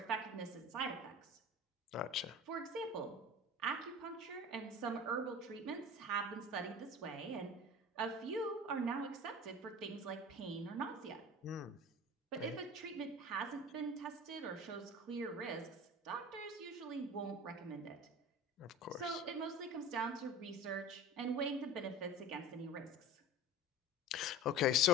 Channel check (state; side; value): normal; both; correlation 0.37